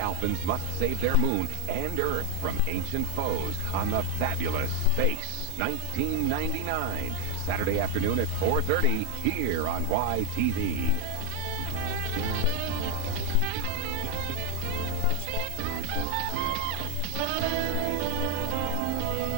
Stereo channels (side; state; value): both; different; correlation 0.00